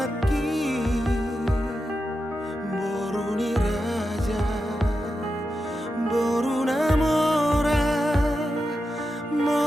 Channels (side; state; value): both; normal; correlation 0.89